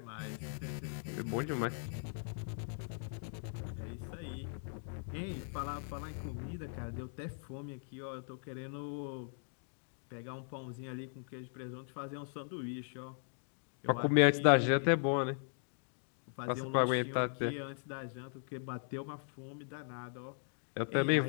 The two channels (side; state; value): right; silent; digital silence